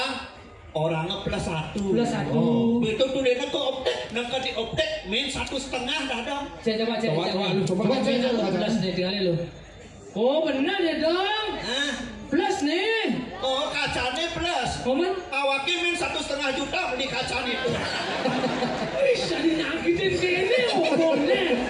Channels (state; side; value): identical; both; correlation 1.00